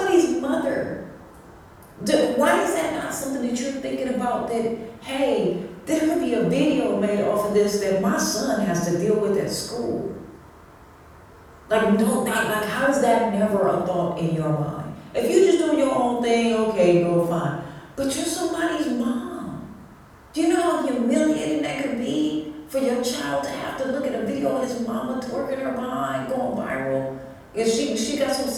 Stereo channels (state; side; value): identical; both; correlation 1.00